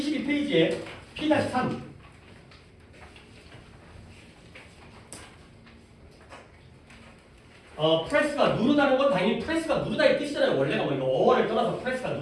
P-3. 프레스가 누르다는 건 당연히 프레스가 누르다의 뜻이잖아요. 원래가 뭐 이거 어원을 떠나서 프레스가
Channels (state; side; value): identical; both; correlation 1.00